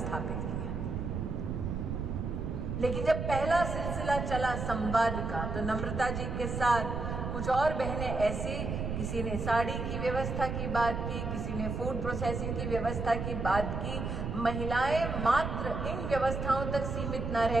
किया। लेकिन जब पहला सिलसिला चला संवाद का, तो नम्रता जी के साथ कुछ और बहनें ऐसी, किसी ने साड़ी की व्यवस्था की बात की, किसी ने फूड प्रोसेसिंग की व्यवस्था की बात की। महिलाएं मात्र इन व्यवस्थाओं तक सीमित न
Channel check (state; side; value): noise; right; rumble, 3 dB below the sound